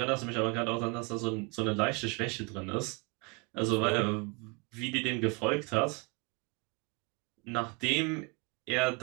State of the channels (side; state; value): left; quieter; 30.2 dB